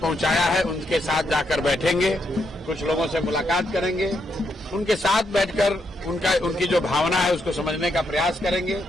है, उनके साथ जाकर बैठेंगे, कुछ लोगों से मुलाकात करेंगे, उनके साथ बैठकर उनकी जो भावना है उसको समझने का प्रयास करेंगे,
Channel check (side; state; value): both; normal; correlation 0.79